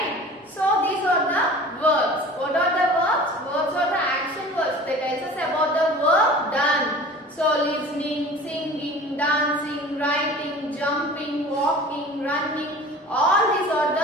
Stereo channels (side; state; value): both; normal; correlation 0.41